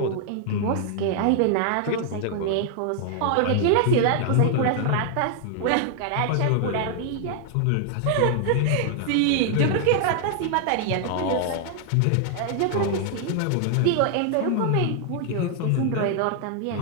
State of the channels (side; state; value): both; different; correlation 0.00